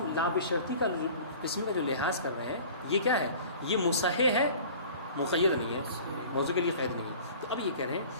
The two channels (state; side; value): inverted; both; correlation -0.44